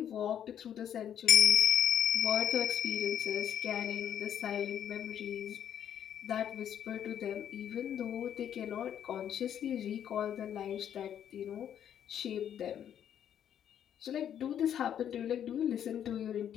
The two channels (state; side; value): quieter; right; 9.6 dB